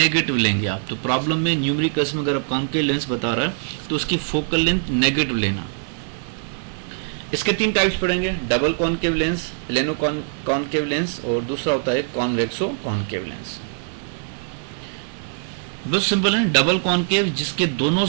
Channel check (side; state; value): left; silent; digital silence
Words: लेंगे आप। तो प्रॉब्लम में न्यूमेरिकल्स में अगर आप कॉनकेव लेंस बता रहा है तो उसकी फोकल लेंथ नेगेटिव लेना। इसके 3 टाइप्स पढ़ेंगे, double concave lens, plano concave lens, और दूसरा होता है कॉन्वेक्सो कॉनकेव लेंस। बहुत सिंपल है। डबल कॉनकेव जिसके दोनों